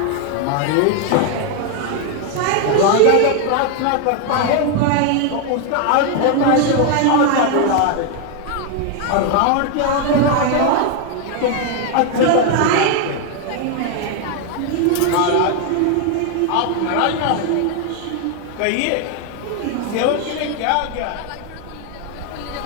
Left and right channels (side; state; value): both; different; correlation 0.01